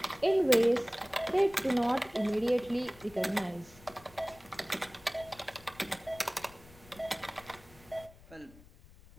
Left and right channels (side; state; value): left; noise; rumble, 23 dB below the sound